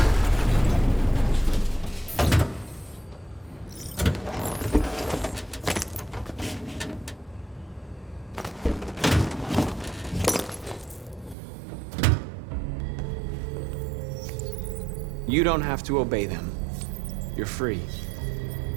You don't have to obey them. You're free.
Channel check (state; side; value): drops out; left; at 11.4 s